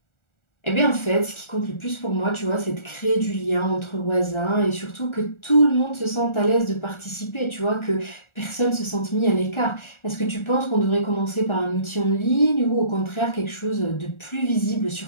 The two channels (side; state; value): right; late; 1.4 ms